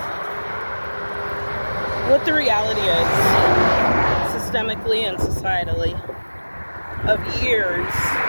what the reality is, systemically and societally, of years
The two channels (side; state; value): both; inverted; correlation -1.00